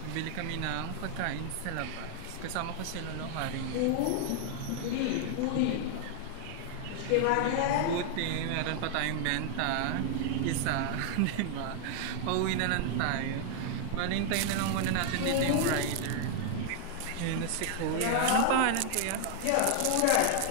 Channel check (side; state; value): both; different; correlation 0.00